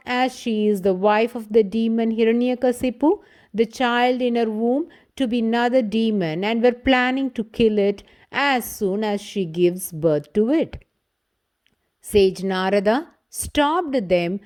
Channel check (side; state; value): both; identical; correlation 1.00